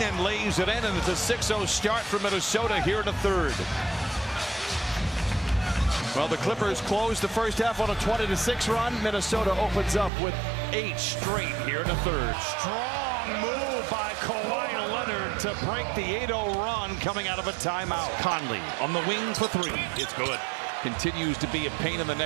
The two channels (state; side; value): drops out; left; at 10.1 s